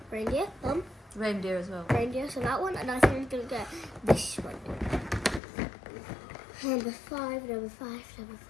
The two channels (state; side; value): drops out; right; at 5.4 s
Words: Reindeer, Reindeer as well. reindeer, so that one, and I think I'm gonna get this one. Number 5, number 5, number